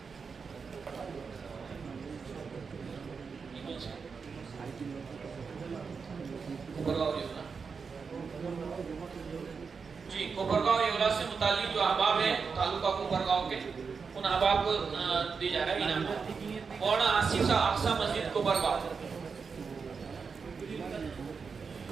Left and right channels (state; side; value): quieter; left; 5.4 dB